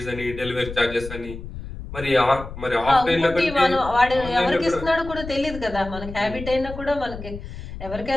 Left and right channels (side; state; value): left; noise; rumble, 11 dB below the sound